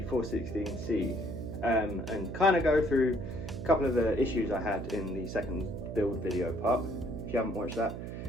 416C and kind of go through a couple of the issues I had in the second build video part. If you haven't watched that,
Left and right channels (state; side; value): noise; right; hum, 7 dB below the sound